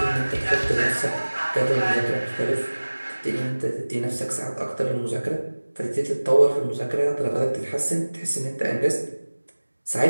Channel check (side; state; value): both; inverted; correlation -1.00